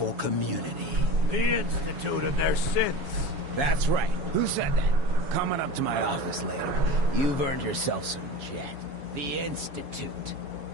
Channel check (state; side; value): late; left; 7.2 ms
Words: community? The Institute and their sins. That's right. Who said that? Coming up to my office later. You've earned yourself some jet. The Institute.